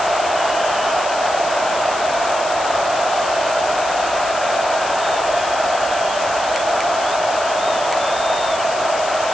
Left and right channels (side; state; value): left; noise; hiss, 11 dB below the sound